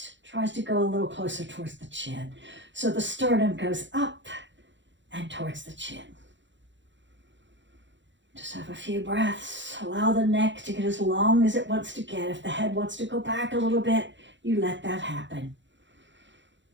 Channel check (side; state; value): left; late; 0.54 ms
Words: tries to go a little closer towards the chin. So the sternum goes up and towards the chin. Just have a few breaths. Allow the neck to get as long as it wants to get. If the head wants to go back a little bit, you let that happen.